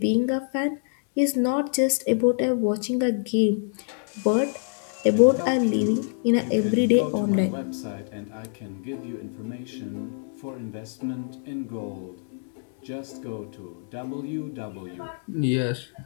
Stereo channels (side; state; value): right; silent; digital silence